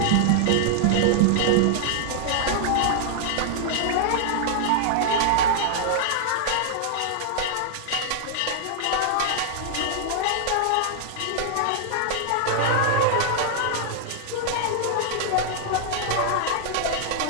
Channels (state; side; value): different; both; correlation -0.01